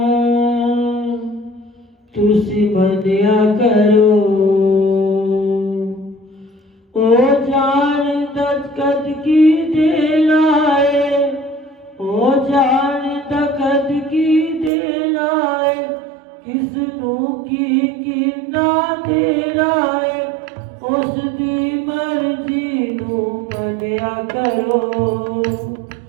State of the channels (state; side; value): drops out; left; at 14.7 s